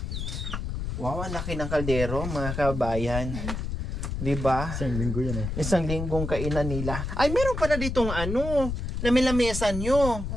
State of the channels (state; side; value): noise; left; rumble, 4 dB below the sound